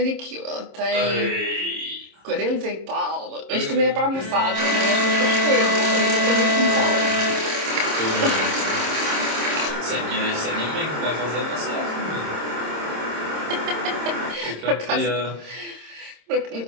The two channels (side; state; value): left; late; 26 ms